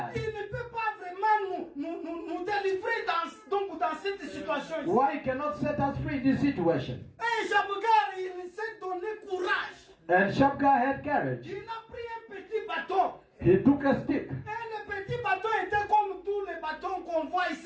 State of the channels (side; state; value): both; identical; correlation 1.00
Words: il ne peut pas vraiment nous délivrer dans cette situation ici? why he cannot set us free in this situation? Et Shabgar, il s'est donné courage. And Shabgar had courage. Il a pris un petit bâton. He took a stick. Et le petit bâton était comme tous les bâtons qu'on voit